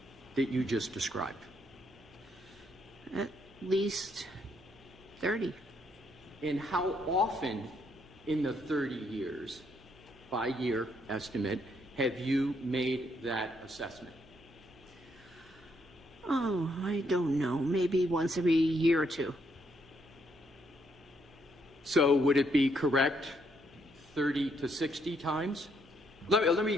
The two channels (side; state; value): right; noise; hum, 26 dB below the sound